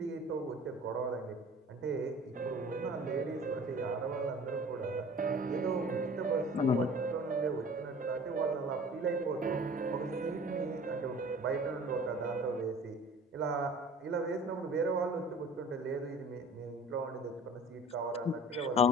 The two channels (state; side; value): normal; both; correlation 0.45